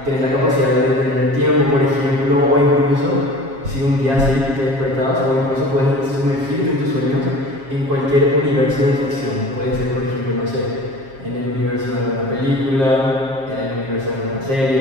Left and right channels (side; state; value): left; late; 7.4 ms